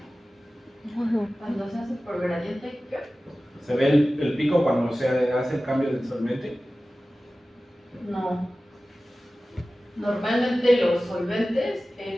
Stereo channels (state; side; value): normal; both; correlation 0.96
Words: Cuando se hace por gradiente, ¿qué? ¿Se ve el pico cuando se hace el cambio del solvente? No. Normalmente los solventes